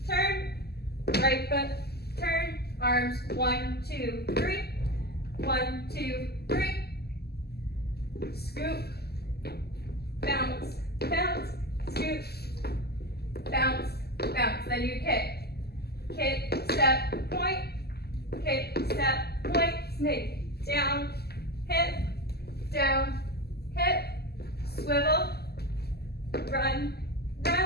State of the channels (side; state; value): right; late; 0.46 ms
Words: turn, right foot, turn, arms, 1, 2, 3, 1, 2, 3, scoop, bounce, bounce, scoop, bounce, bounce. Then you kick, step, point, snake, down, hip,